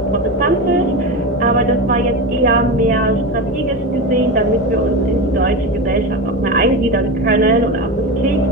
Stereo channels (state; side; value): normal; both; correlation 0.22